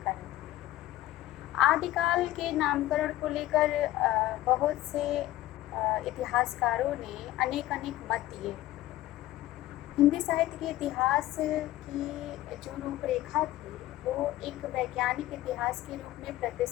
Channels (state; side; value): quieter; right; 15.3 dB